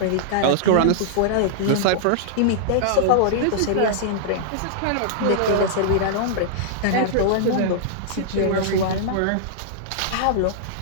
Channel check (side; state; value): both; different; correlation -0.01